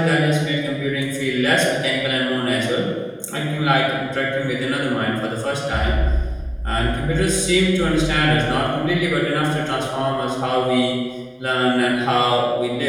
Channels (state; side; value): identical; both; correlation 1.00